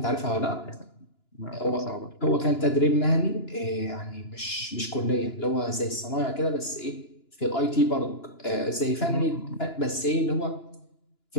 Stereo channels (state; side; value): late; right; 2.9 ms